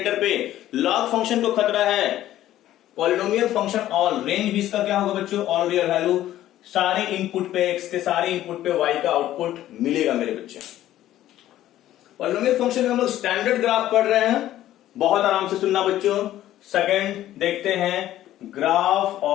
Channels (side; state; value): right; quieter; 13.4 dB